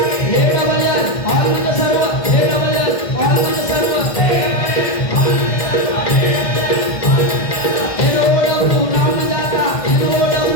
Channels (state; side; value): late; right; 1.6 ms